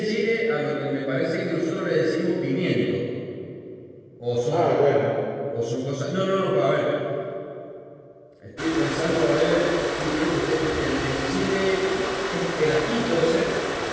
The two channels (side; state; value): both; identical; correlation 1.00